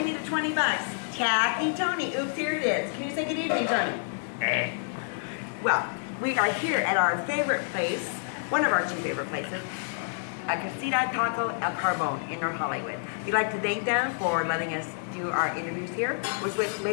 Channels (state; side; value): silent; right; digital silence